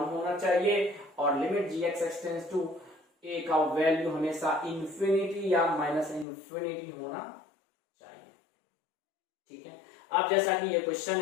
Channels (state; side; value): drops out; right; at 6.2 s